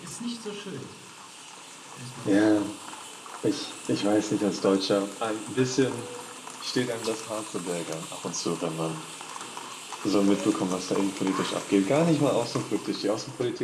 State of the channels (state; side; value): identical; both; correlation 1.00